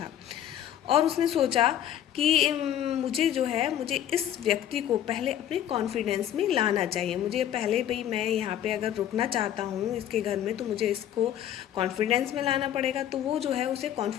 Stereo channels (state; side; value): quieter; right; 11.0 dB